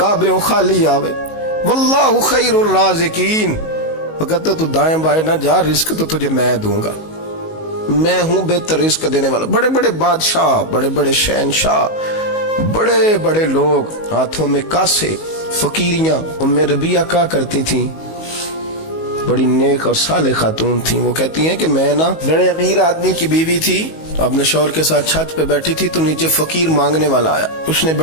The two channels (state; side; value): late; right; 19 ms